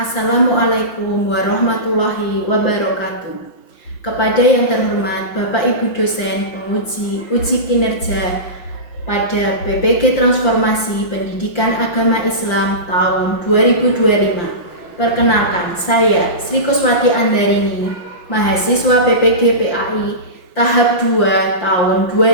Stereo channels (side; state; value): right; late; 5.7 ms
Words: warahmatullahi wabarakatuh. Kepada yang terhormat Bapak Ibu dosen penguji uji kinerja pada PPG Transformasi Pendidikan Agama Islam tahun 2025. Perkenalkan, saya Sri Kuswati Andarini, mahasiswa PPG PAI tahap 2 tahun